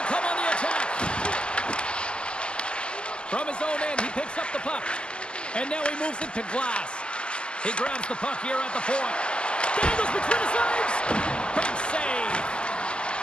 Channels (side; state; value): right; late; 0.050 ms